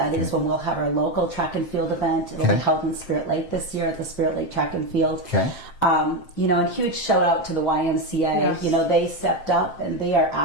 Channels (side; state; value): right; late; 7.5 ms